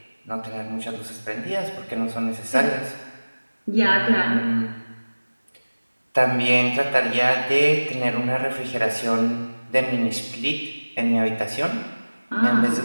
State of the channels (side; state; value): both; inverted; correlation -1.00